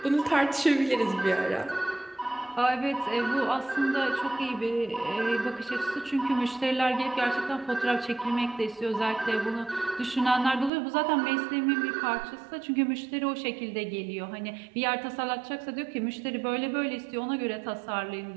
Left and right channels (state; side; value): drops out; left; at 10.7 s